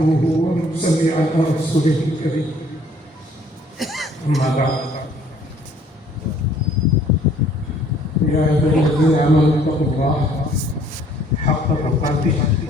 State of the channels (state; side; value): normal; both; correlation 0.59